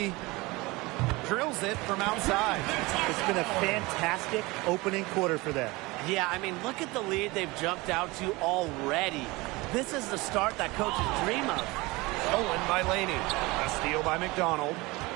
Drills it from outside. It's been a fantastic opening quarter for them. Yeah, I mean, look at the lead they've jumped out to already. This is the start that coaches dream of. Stolen by Laney. A steal by McDonald.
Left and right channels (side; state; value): left; quieter; 22.7 dB